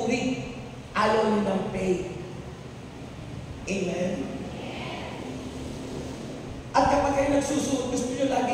ayaw niyo ng pay. Amen? At kapag kayo nagsusuot, gusto niyo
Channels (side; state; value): both; identical; correlation 1.00